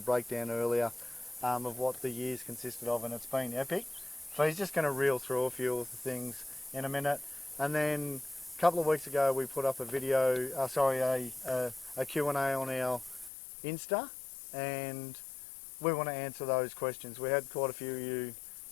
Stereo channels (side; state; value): right; drops out; at 13.3 s